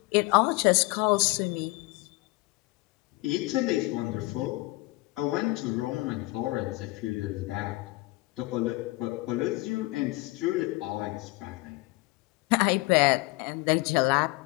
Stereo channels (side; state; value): right; quieter; 22.6 dB